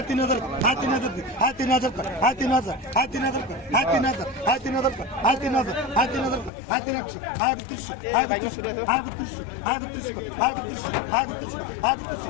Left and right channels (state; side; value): drops out; right; at 6.5 s